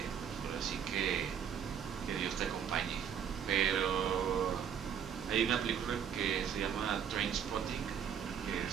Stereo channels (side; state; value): left; quieter; 8.3 dB